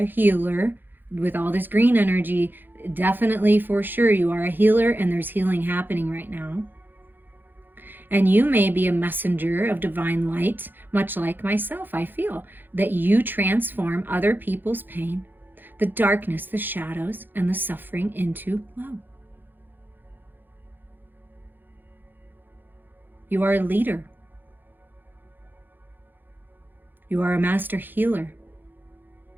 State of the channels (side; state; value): left; late; 0.092 ms